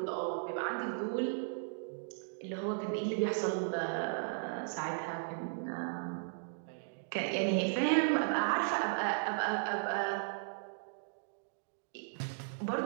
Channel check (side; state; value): left; silent; digital silence